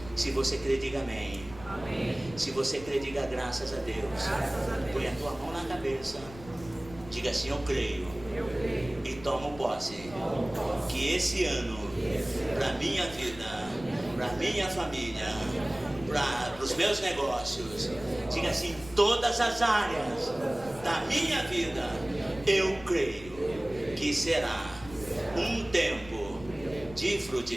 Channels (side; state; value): left; noise; rumble, 17 dB below the sound